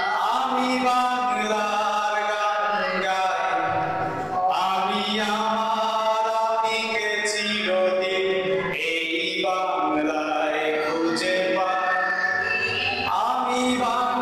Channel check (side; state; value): both; identical; correlation 1.00